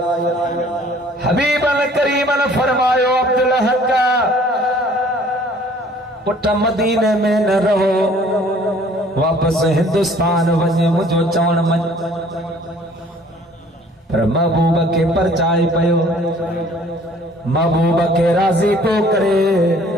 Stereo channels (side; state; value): both; normal; correlation 0.55